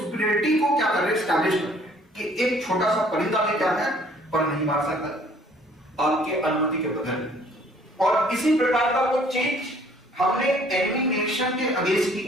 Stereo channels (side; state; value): both; normal; correlation 0.58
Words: को क्या कर रहे हैं, एस्टैब्लिश कर रहे हैं कि एक छोटा सा परिंदा भी क्या है पर नहीं मार सकता आपके अनुमति के बगैर। और इसी प्रकार का वो चीज हमने एनिमी नेशन के अगेंस्ट